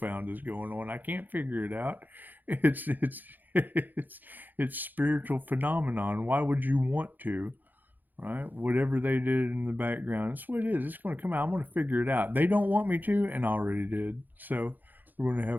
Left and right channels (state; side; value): late; left; 0.086 ms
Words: is going on. I can't figure it out. It's spiritual phenomenon. Why would you want to? Right? Whatever they did in the background, that's what it is. It's going to come out. I'm going to figure it out. They don't want me to, and I already did. So we're going to